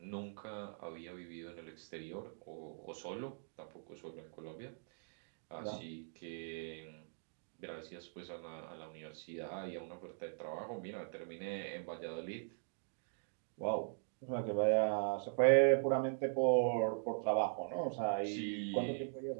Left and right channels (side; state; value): left; silent; digital silence